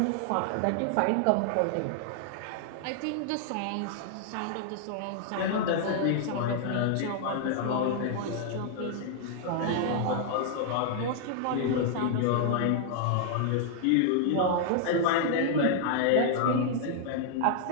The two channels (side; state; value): both; different; correlation 0.00